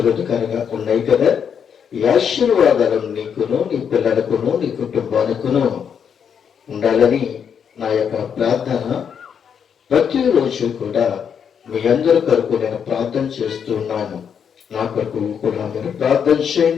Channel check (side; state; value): right; quieter; 7.5 dB